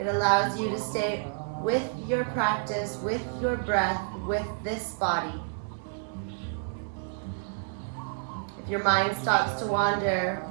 allows you to stay with your practice, with your breath, with this body. If your mind stops to wander,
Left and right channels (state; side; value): silent; left; digital silence